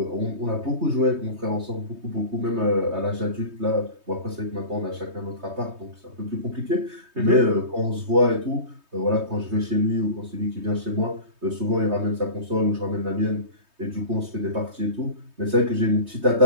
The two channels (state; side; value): late; left; 3.2 ms